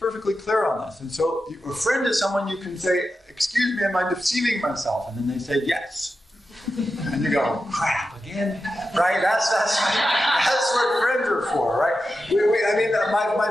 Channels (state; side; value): normal; both; correlation 0.90